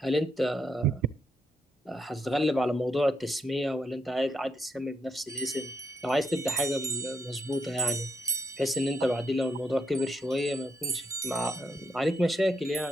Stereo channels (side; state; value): both; normal; correlation 0.78